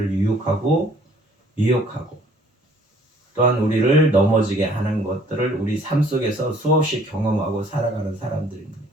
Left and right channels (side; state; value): both; normal; correlation 0.58